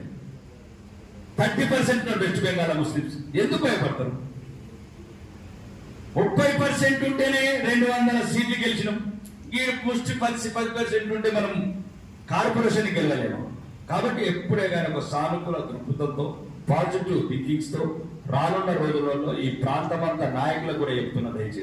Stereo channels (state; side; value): identical; both; correlation 1.00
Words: 30% వెస్ట్ బెంగాల్ ముస్లిమ్స్. ఎందుకు భయపడతారు? 30% ఉంటేనే 200 సీట్లు గెలిచినాం. ఈ ముష్టి 10% ఉంటే మనం కార్పొరేషన్కి వెళ్ళలేము. కాబట్టి ఎప్పుడే కానీ ఒక సానుకూల దృక్పథంతో, పాజిటివ్ థింకింగ్స్ తో రానున్న రోజులలో ఈ ప్రాంతమంతా నాయకులకు కూడా చెప్తున్నా,